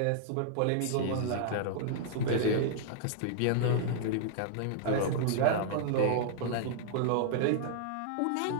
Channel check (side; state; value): both; different; correlation -0.01